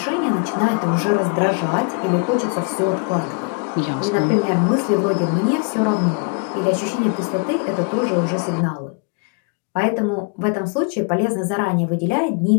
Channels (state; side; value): quieter; right; 34.6 dB